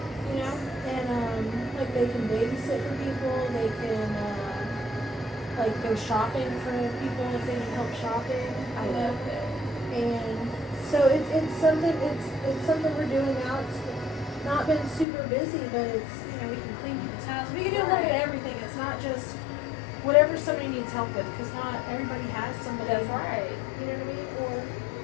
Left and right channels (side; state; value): right; drops out; at 15.1 s